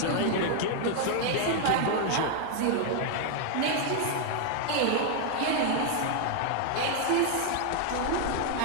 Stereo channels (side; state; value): both; different; correlation 0.00